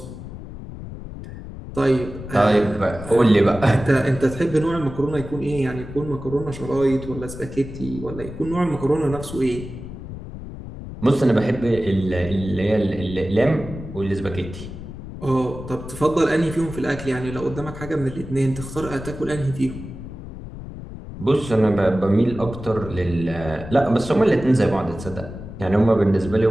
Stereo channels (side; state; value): left; noise; rumble, 11 dB below the sound